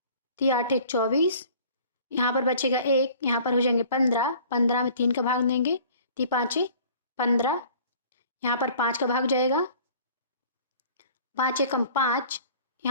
3 8 24, यहाँ पर बचेगा 1, यहाँ पर हो जाएंगे 15, 15 में 3 का भाग देंगे, 3 5 15, यहाँ पर 5 का भाग जाएगा, 5 एकम 5,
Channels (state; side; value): inverted; both; correlation -0.50